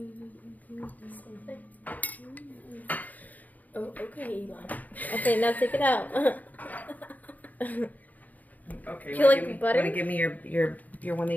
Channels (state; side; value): late; right; 0.079 ms